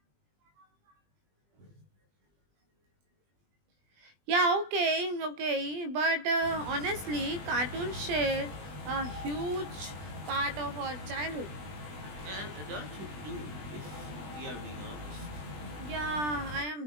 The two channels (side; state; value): left; late; 20 ms